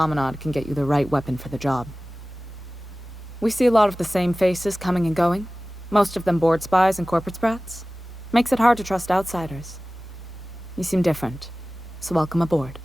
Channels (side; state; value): both; normal; correlation 0.97